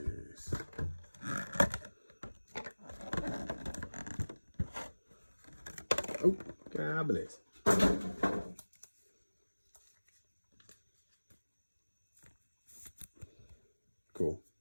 Oh, God bless. Cool.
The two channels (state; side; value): inverted; both; correlation -1.00